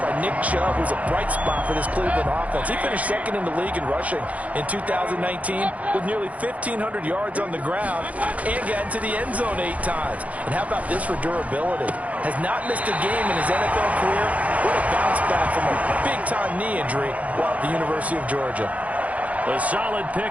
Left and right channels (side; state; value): left; late; 0.068 ms